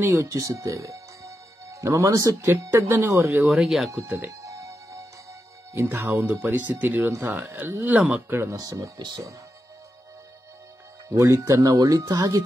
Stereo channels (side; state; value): both; normal; correlation 0.88